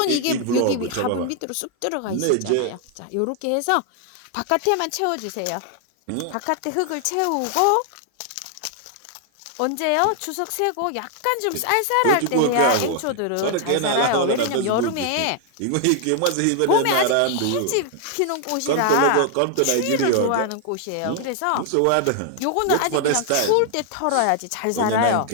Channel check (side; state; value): both; different; correlation 0.00